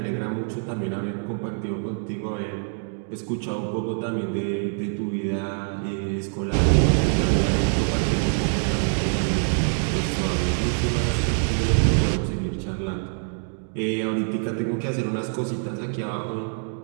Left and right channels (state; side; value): silent; left; 61 dB below the other